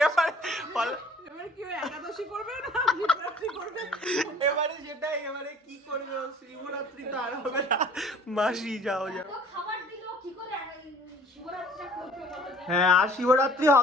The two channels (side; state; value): both; normal; correlation 0.51